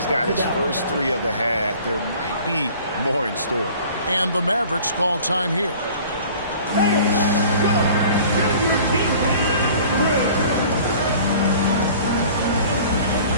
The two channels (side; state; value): both; inverted; correlation -0.47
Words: got his first 3 of the half, there might be more in store. And the Mavericks call time here.